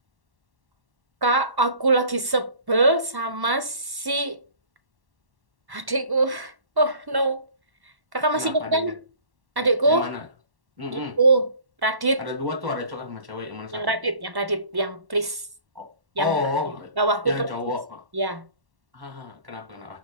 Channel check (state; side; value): late; left; 1.1 ms